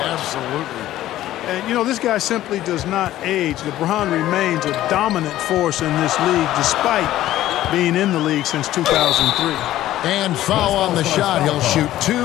Absolutely. And, you know, this guy simply does not age. LeBron remains a dominant force in this league despite being in the league since 2003. And foul on the shot. He'll shoot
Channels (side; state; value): right; quieter; 14.0 dB